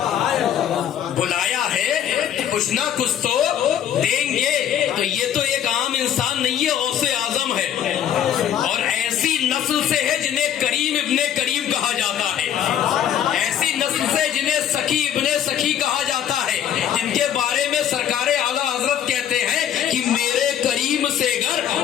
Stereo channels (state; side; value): quieter; right; 9.9 dB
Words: بلایا ہے کچھ نہ کچھ تو دیں گے۔ تو یہ تو ایک عام انسان نہیں ہے، غوث اعظم ہے، اور ایسی نسل سے ہے جنہیں کریم ابن کریم کہا جاتا ہے، ایسی نسل سے جنہیں سخی ابن سخی کہا جاتا ہے، جن کے بارے میں سرکار اعلیٰ حضرت کہتے ہیں کہ میرے کریم سے گر